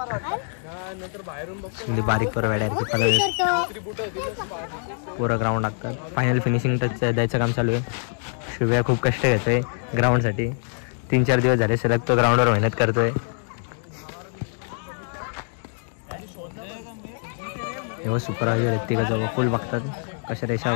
बारीक पोरं वेड्या पोरं ग्राउंड लागतात. फायनल फिनिशिंग टच द्यायचं काम चालू आहे. शिव्या खूप कष्ट घेतोय ग्राउंड साठी. 3-4 दिवस झाले सलग तो ग्राउंडवर मेहनत करतोय. एवढं सुपरवायझर व्यक्तिगत फुल बघतात कशा रेषा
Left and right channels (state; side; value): silent; right; 59 dB below the other